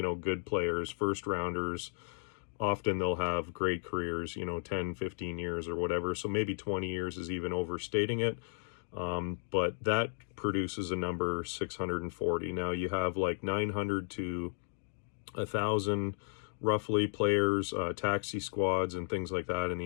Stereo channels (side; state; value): right; silent; digital silence